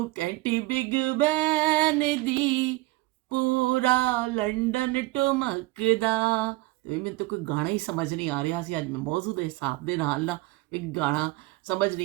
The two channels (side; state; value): left; quieter; 20.2 dB